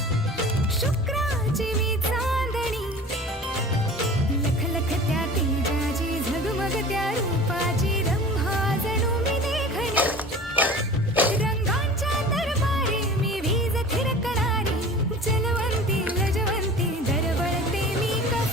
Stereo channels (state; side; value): normal; both; correlation 0.40